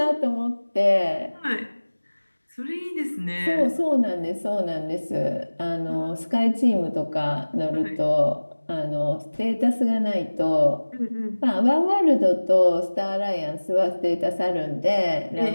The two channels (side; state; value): both; inverted; correlation -1.00